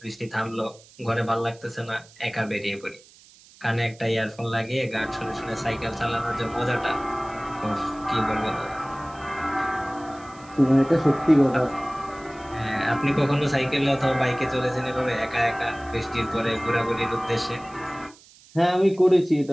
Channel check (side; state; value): right; noise; hiss, 25 dB below the sound